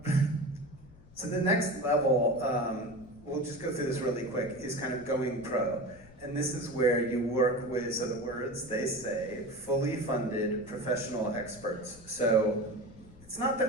So the next level, we'll just go through this really quick, is kind of going pro. And this is where you work with, so the words they say, fully funded professional experts. So it's not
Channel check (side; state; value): left; noise; rumble, 22 dB below the sound